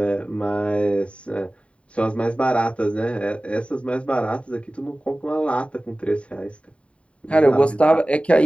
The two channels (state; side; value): late; right; 0.062 ms